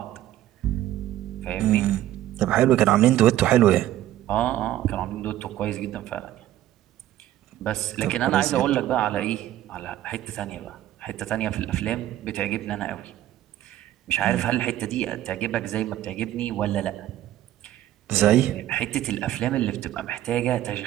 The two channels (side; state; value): left; quieter; 13.4 dB